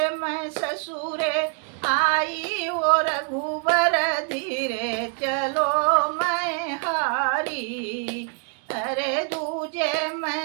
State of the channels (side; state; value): left; quieter; 37.9 dB